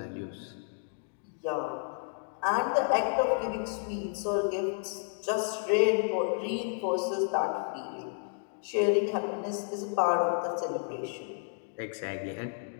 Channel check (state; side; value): silent; right; 57 dB below the other